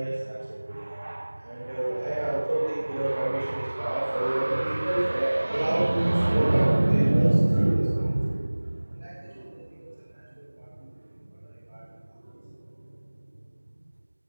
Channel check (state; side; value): inverted; both; correlation -1.00